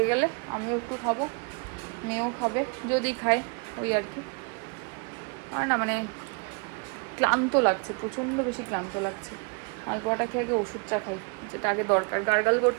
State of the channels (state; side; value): quieter; left; 36.3 dB